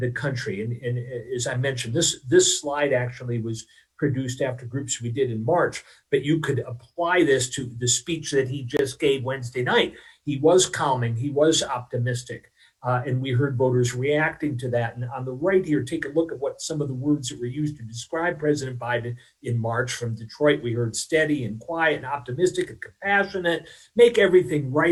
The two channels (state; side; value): identical; both; correlation 1.00